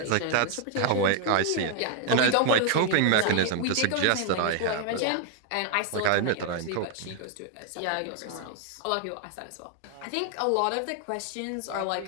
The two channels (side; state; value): both; different; correlation 0.00